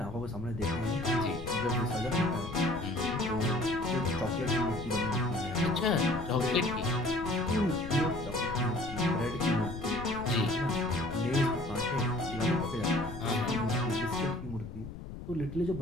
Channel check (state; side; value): noise; left; rumble, 10 dB below the sound